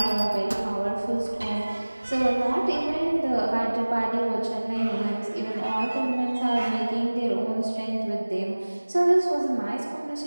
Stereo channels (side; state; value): both; inverted; correlation -1.00